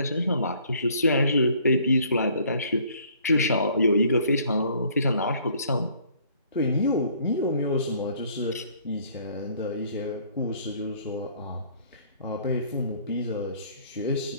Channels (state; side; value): inverted; both; correlation -0.59